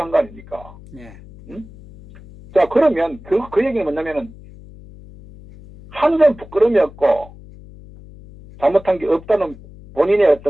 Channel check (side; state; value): left; noise; hum, 20 dB below the sound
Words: 거 아닙니까? 예. 응? 자, 그러면 그 얘기는 뭐냐면은 한 점 부끄러움이었고 잘못한 게 없다는 본인의